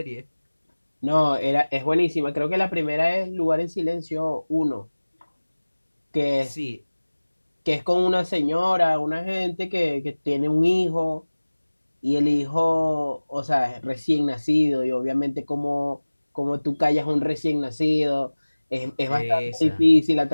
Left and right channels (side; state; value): both; inverted; correlation -1.00